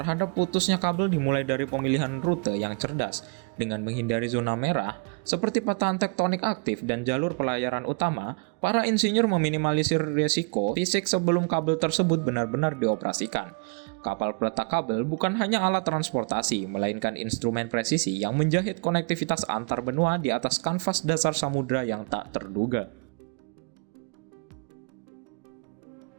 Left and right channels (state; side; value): quieter; left; 35.1 dB